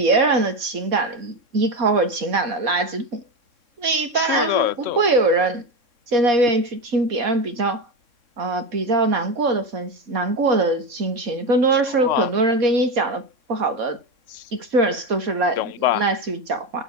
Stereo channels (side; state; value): left; late; 3.6 ms